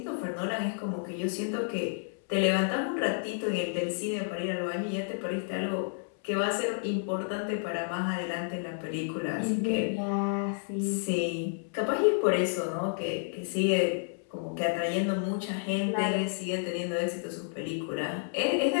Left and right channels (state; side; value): silent; right; 57 dB below the other